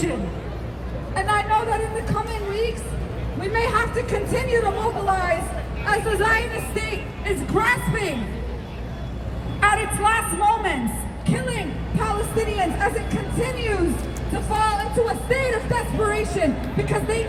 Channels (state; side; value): identical; both; correlation 1.00